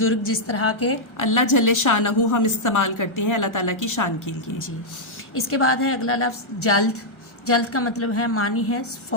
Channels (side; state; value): right; late; 1.3 ms